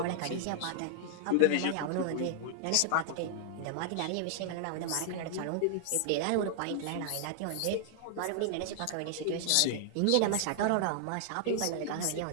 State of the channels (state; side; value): different; both; correlation -0.01